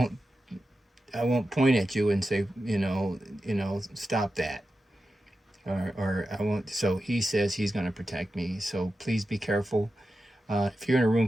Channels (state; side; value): normal; both; correlation 0.91